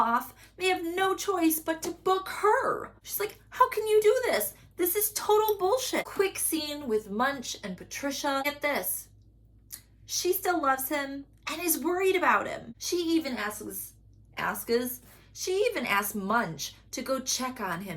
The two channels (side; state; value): both; identical; correlation 1.00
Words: they have no choice but to book her. She's like, how can you do this? This is total bullshit. Quick scene with Munch and Patricia. Get this. She still loves him and is worried about him. She even asks Munch to go check on